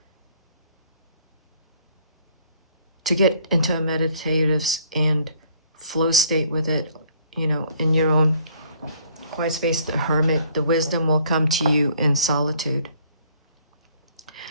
to get into a meditative and flow state with it, you know, in your own quiet space. The Hermit, the wisdom will come to you in solitude.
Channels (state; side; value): inverted; both; correlation -0.62